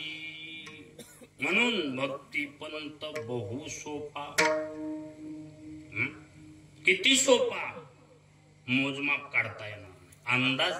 म्हणून भक्ती पंत बहु सोपा. किती सोपा, मोजमाप काढता येणार नाही, अंदाज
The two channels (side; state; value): both; identical; correlation 1.00